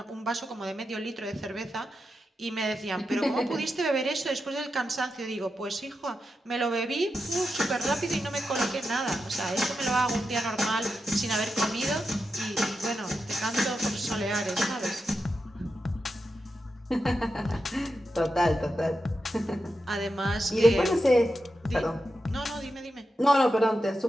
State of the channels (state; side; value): normal; both; correlation 0.88